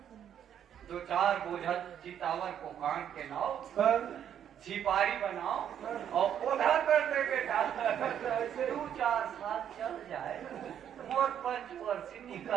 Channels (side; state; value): left; quieter; 9.4 dB